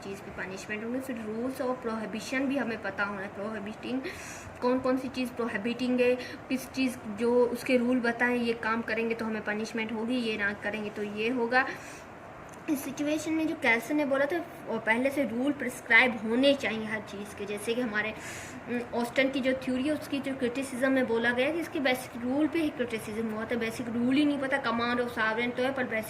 की पनिशमेंट होंगे। फिर रूल्स और प्रोहिबिशन भी हमें पता होना है, प्रोहिबिटिंग कौन सी चीज़ प्रोहिबिटिंग है, किस चीज़ जो उसके रूल बताएं ये काम करेंगे तो हमें पनिशमेंट होगी, ये ना करेंगे तो ये होगा। इस सिचुएशन में जो कैल्सन ने बोला था पहले से रूल प्रिस्क्राइब होने चाहिए हर चीज़ के। जैसे कि हमारे ऑस्टन की जो थ्योरी है उसकी जो क्रिटिसिज्म में बोला गया कि इसके बेसिक रूल पे ही क्रिटिसिज्म हुआ था। बेसिक रूल ही नहीं पता, कमांड ऑफ सॉवरेन तो है पर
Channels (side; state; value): both; identical; correlation 1.00